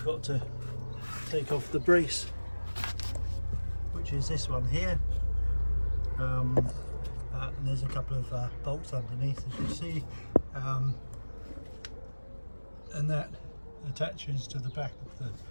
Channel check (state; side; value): inverted; both; correlation -1.00